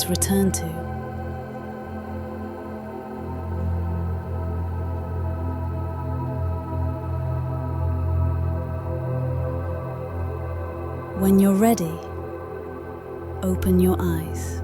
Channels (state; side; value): identical; both; correlation 1.00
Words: return to. When you're ready, open your eyes.